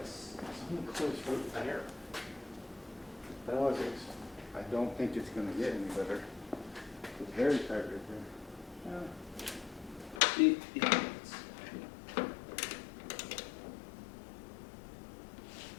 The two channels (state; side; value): drops out; right; at 10.2 s